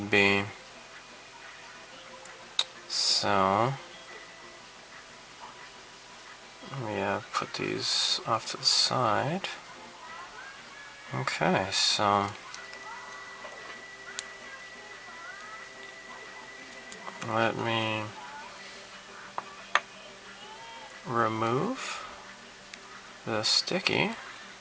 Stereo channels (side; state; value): both; identical; correlation 1.00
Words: be. So, let me put these off to the side. Okay, so let me remove the sticky.